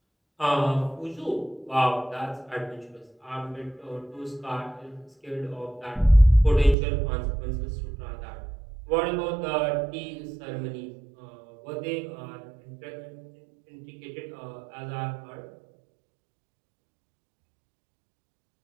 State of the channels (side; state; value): left; drops out; at 6.8 s